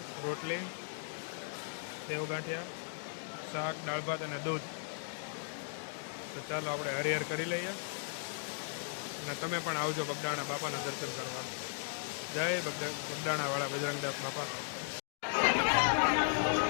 રોટલી, સેવ ગાંઠિયા, શાક, દાળ ભાત અને દૂધ. તો ચાલો આપણે હરિહર કરી લઈએ અને તમે પણ આવજો બગદાણા બાપાના દર્શન કરવા. જય બગદાણા વાળા બજરંગદાસ બાપા.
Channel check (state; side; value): silent; right; digital silence